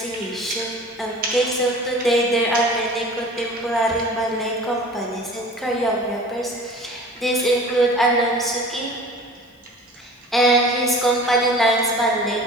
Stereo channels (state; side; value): normal; both; correlation 0.42